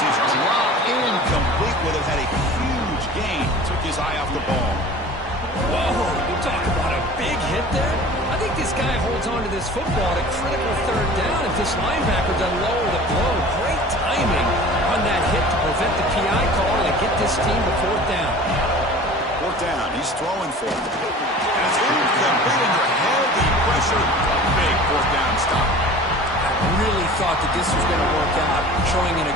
is dropped incomplete. Would have had a huge gain. Took his eye off the ball. Whoa, you talk about a big hit there. I think this guy holds on to this football at a critical third down if this linebacker doesn't lower the blow. Great timing on that hit to prevent the PI call and get this team to fourth down. Fourth down, he's throwing for it. And it's incomplete under heavy pressure. Big fourth down stop. Really thought that this was going to work out, showing an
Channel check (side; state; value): both; normal; correlation 0.42